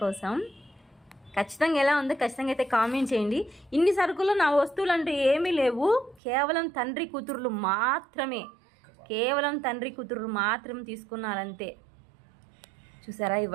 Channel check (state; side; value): drops out; left; at 6.2 s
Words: కోసం. ఖచ్చితంగా ఎలా ఉందో ఖచ్చితంగా అయితే కామెంట్ చేయండి. ఇన్ని సరుకులు నా వస్తువులు అంటే ఏమీ లేవు, కేవలం తండ్రి కూతుర్లు మాత్రం తీసుకున్నారంతే. చూసారా, ఈ